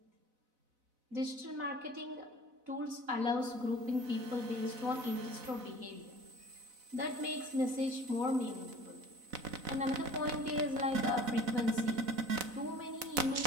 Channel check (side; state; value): left; late; 4.0 ms